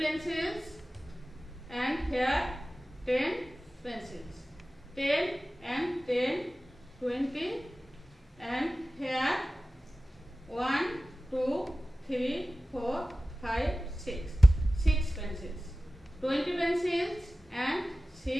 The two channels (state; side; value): normal; both; correlation 0.97